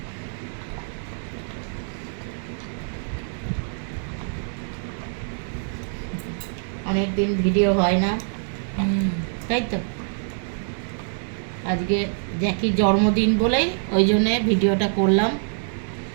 অনেকদিন ভিডিও হয় না, তাই তো আজকে জ্যাকির জন্মদিন বলেই ওই জন্যে ভিডিওটা করলাম।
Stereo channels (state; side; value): silent; left; digital silence